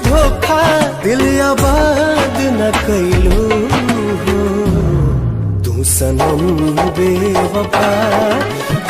धोखा। दिल आबाद न कैलू हो। तू सनम बेवफा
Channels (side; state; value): both; identical; correlation 1.00